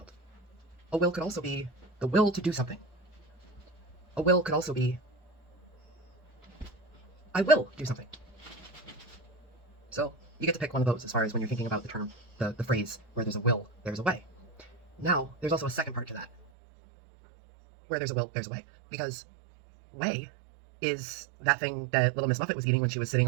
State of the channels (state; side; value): drops out; left; at 16.4 s